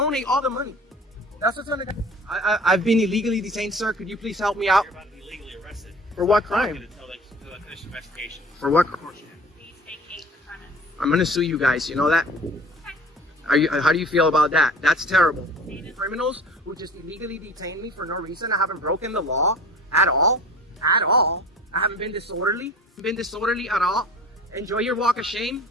all the money. That's what's gonna. I've been illegally detained, sir. Could you please help me out? You're about to be legally arrested. For what crime? Until they finish the investigation. For what crime? Please vacate the premise. I'm gonna sue you guys. You know that? How do you feel about that? That's terrible. Criminals who just illegally detain me for no reason. I haven't broken the law at all. At all. I haven't been disorderly. At all. Enjoy your walk of shame.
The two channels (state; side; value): normal; both; correlation 0.43